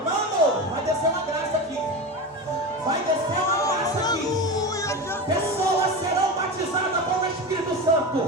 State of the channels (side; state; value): both; normal; correlation 0.24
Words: Mano, vai descer uma graça aqui. Vai descer uma graça aqui. Pessoas serão batizadas com o Espírito Santo.